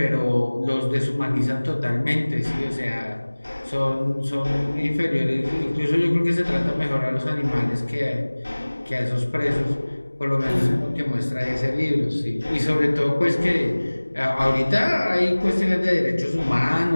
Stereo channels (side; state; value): both; inverted; correlation -1.00